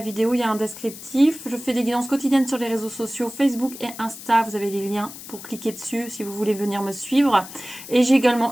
il y a un descriptif. Je fais des guidances quotidiennes sur les réseaux sociaux, Facebook et Insta. Vous avez les liens pour cliquer dessus si vous voulez venir me suivre. Et j'ai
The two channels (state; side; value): noise; left; hiss, 14 dB below the sound